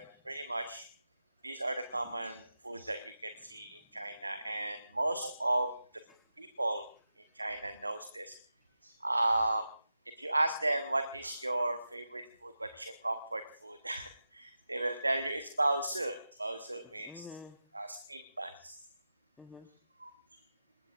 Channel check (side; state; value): both; inverted; correlation -0.92